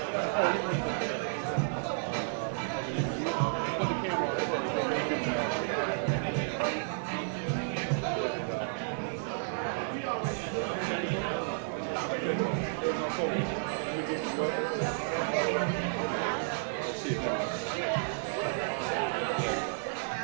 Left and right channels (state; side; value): silent; left; digital silence